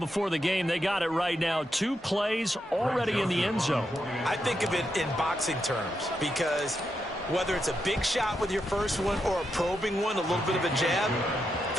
the game, they got it right now. 2 plays already in the end zone. I think of it in boxing terms because whether it's a big shot with your first one or a probing one, a little bit of a jab,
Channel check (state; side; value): normal; both; correlation 0.84